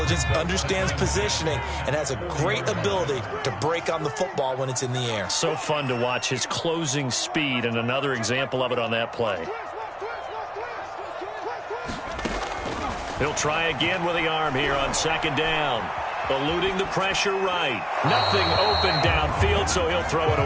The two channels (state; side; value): identical; both; correlation 1.00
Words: understands positioning, and has a great ability to break on the football when it's in the air. So fun to watch his closing speed, and another example of it on that play. He'll try again with the arm here on 2nd down. Eluding the pressure right. Nothing open downfield, so he'll throw it